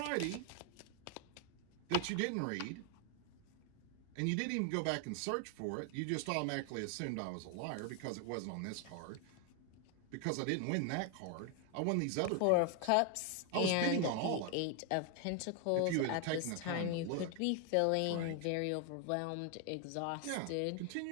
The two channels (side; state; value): both; different; correlation 0.01